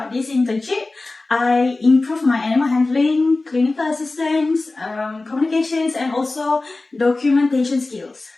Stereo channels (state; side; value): quieter; right; 3.2 dB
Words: this internship, I improved my animal handling, clinical assistance, communications, and also documentation skills.